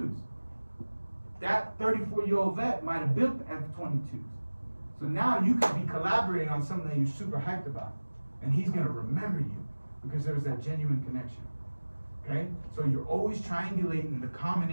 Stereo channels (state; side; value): inverted; both; correlation -1.00